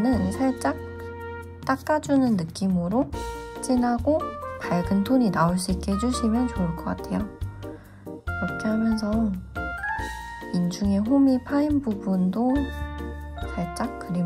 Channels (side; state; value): both; identical; correlation 1.00